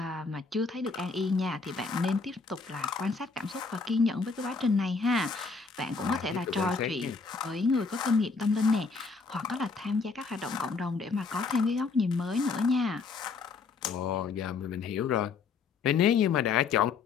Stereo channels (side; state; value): right; quieter; 4.7 dB